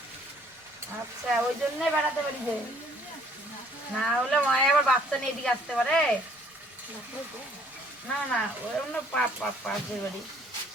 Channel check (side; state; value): both; normal; correlation 0.61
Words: আচ্ছা, ওই জন্যই বেড়াতে পারি যে, না হলে মায়ে আবার বাচ্চা নিয়ে এদিকে আসতে পারে না। না ওই অন্য পাশের বাড়ি।